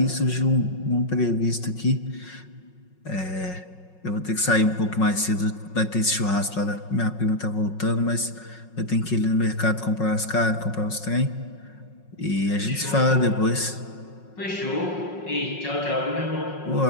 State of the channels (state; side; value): late; right; 5.5 ms